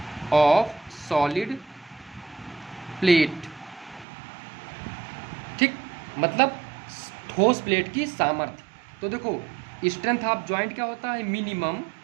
ऑफ सॉलिड प्लेट, ठीक, मतलब ठोस प्लेट की सामर्थ्य। तो देखो स्ट्रेंथ ऑफ जॉइंट क्या होता है, minimum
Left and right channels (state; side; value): drops out; left; at 4.0 s